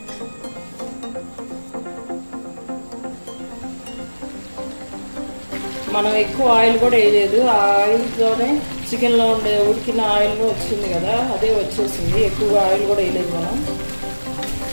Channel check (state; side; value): inverted; both; correlation -1.00